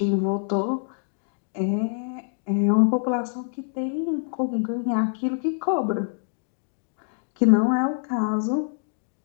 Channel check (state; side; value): silent; right; digital silence